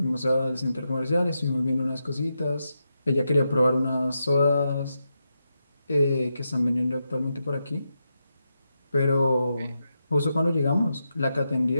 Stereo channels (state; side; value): inverted; both; correlation -0.86